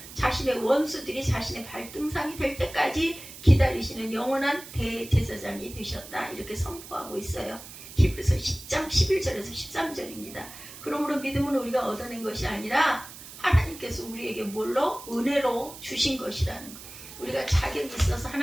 자신의 원수들이 자신의 발등상이 될 때까지 기다리시는 영원한 대제사장이 되셨다. 이렇게 선포하고 있어요. 히브리서 10장 11절에서 13절입니다. 그러므로 믿음은 우리가 얻어낸 것이 아니라 하나님께서 우리에게 뭘로? 은혜로 주신 것이라는 것. 우리가 자격이 있어서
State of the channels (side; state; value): right; noise; hiss, 15 dB below the sound